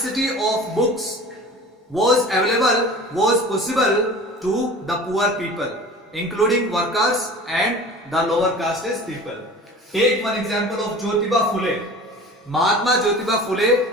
of books was possible to the poor people, including workers and the lower caste people. Take one example of Jyotiba Phule. Mahatma Jyotiba Phule,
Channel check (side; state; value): both; normal; correlation 0.40